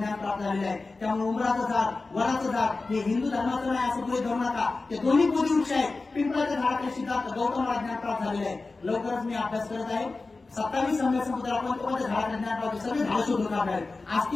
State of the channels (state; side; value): quieter; right; 3.6 dB